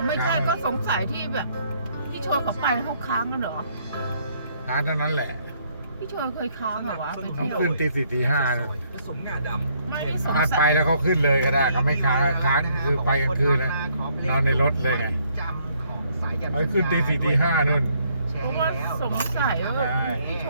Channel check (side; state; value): both; inverted; correlation -0.68